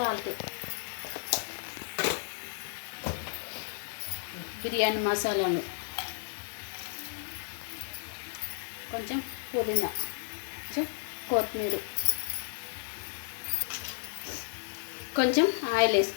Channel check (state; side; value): silent; right; digital silence